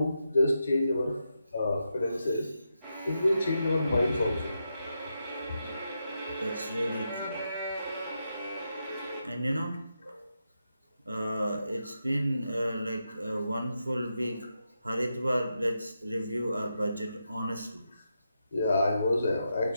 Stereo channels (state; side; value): inverted; both; correlation -0.85